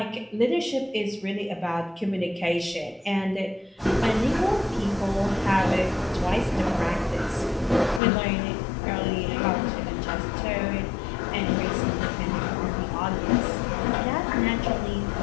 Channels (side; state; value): right; drops out; at 8.0 s